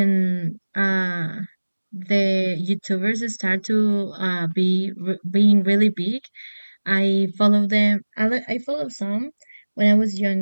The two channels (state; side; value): inverted; both; correlation -1.00